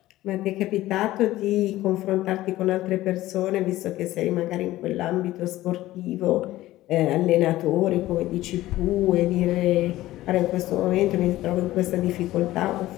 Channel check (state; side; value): quieter; right; 16.0 dB